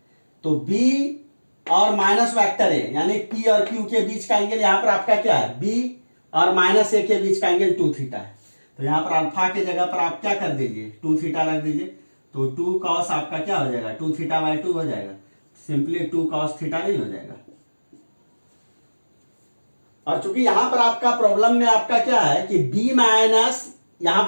तो बी और माइनस वेक्टर ए यानी पी और क्यू के बीच का एंगल यहां पर आपका क्या है, बी और माइनस ए के बीच का एंगल 2 थीटा है। तो यहाँ पर अल्फा के जगह पर आप क्या कर दीजिए, 2 थीटा रख दीजिए, तो 2 कॉस आपका क्या हो जाएगा, 2 थीटा बाई 2 हो जाएगा, सिंपली 2 कॉस थीटा नहीं हो जाएगा। और चूंकि यहां पर आपका प्रॉब्लम में आपका क्या है कि b माइनस, यहां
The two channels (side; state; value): both; inverted; correlation -1.00